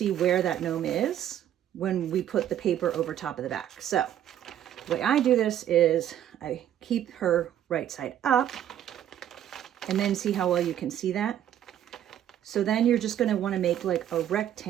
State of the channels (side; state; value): left; quieter; 10.9 dB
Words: where that gnome is when we put the paper over top of the back. So the way I do this is I keep her right side up, and then see how well you can see that. So then you're just gonna wanna make like a